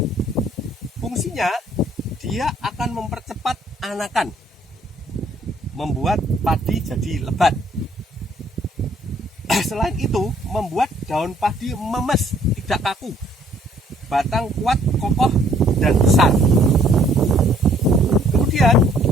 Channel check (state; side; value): normal; both; correlation 0.62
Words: Fungsinya dia akan mempercepat anakan, membuat padi jadi lebat. Selain itu, membuat daun padi memes, tidak kaku, batang kuat, kokoh, dan besar. Kemudian